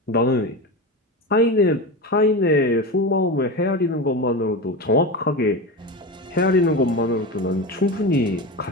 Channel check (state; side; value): normal; both; correlation 0.23